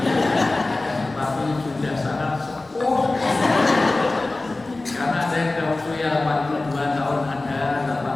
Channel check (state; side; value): quieter; right; 3.1 dB